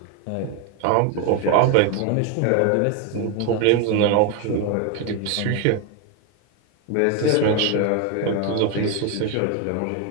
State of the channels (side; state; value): both; different; correlation 0.02